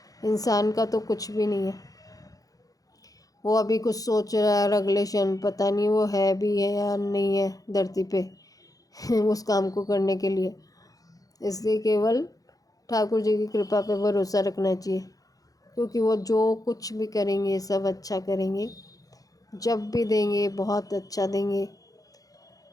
इंसान का तो कुछ भी नहीं है। वो अभी कुछ सोच रहा है, रेगुलेशन पता नहीं वो है भी है या नहीं है धरती पे उस काम को करने के लिए। इसलिए केवल ठाकुर जी की कृपा पे भरोसा रखना चाहिए, क्योंकि वो जो कुछ भी करेंगे सब अच्छा करेंगे। जब भी देंगे बहुत अच्छा देंगे।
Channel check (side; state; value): right; late; 0.17 ms